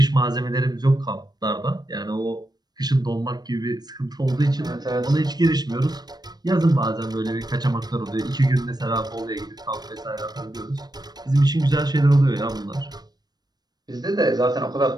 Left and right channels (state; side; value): late; left; 0.19 ms